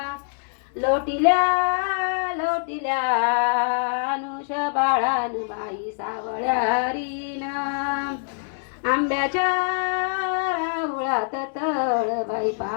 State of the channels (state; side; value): silent; right; 62 dB below the other